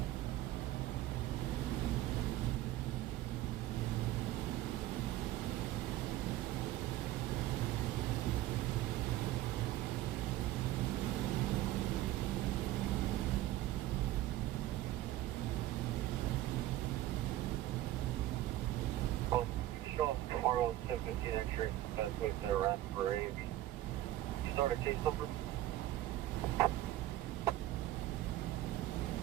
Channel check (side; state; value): left; quieter; 14.9 dB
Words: Show up tomorrow at 7:15 X-ray. That's with their run for A&B. You start a case number?